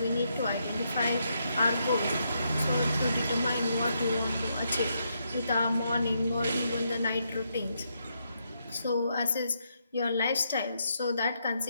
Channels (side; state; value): both; inverted; correlation -0.78